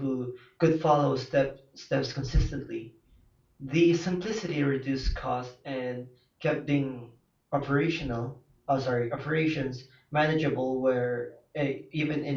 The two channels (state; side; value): identical; both; correlation 1.00